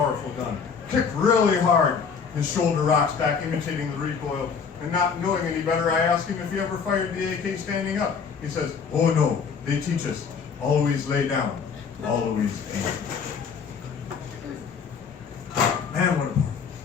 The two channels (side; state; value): right; quieter; 6.1 dB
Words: gun. Kicked really hard. His shoulder rocks back, imitating the recoil. And not knowing any better, I ask him if he ever fired the AK standing up. He says, oh no, they teach us. Always lay down. Always aim. Man, what a power.